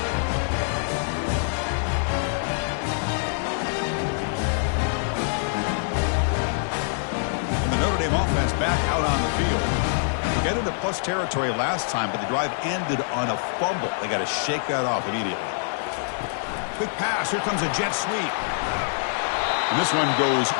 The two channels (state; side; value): silent; right; digital silence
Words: Notre Dame offense back out on the field. They got into plus territory last time, but the drive ended on a fumble. They got to shake that off immediately. Quick pass. Here comes a jet sweep. And this one goes